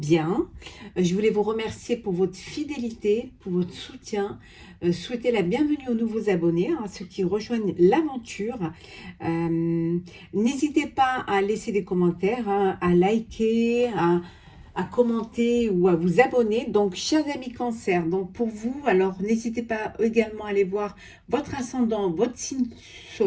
Je voulais vous remercier pour votre fidélité, pour votre soutien. Souhaiter la bienvenue aux nouveaux abonnés, à ceux qui rejoignent l'aventure. N'hésitez pas à laisser des commentaires, à liker, à commenter ou à vous abonner. Donc, chers amis Cancer, donc pour vous, alors n'hésitez pas également à aller voir votre ascendant, votre signe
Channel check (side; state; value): both; identical; correlation 1.00